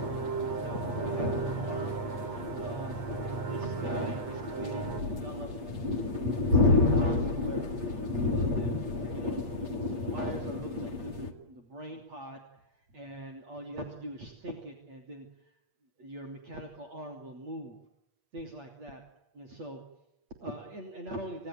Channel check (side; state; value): left; late; 8.5 ms